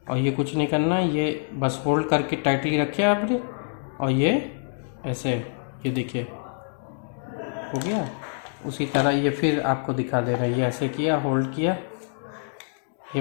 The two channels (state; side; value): silent; right; digital silence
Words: और ये कुछ नहीं करना, ये बस होल्ड करके टाइटली रखे आपने और ये ऐसे, ये देखिए हो गया। उसी तरह ये फिर आपको दिखा दे रहा है, ये ऐसे किया, होल्ड किया।